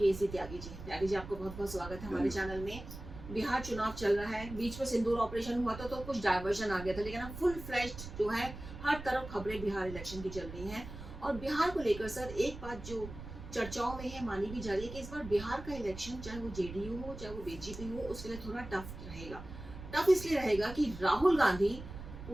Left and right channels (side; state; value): right; noise; rumble, 12 dB below the sound